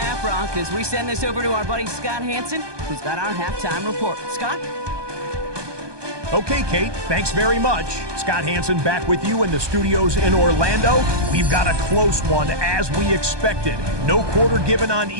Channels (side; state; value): left; late; 1.2 ms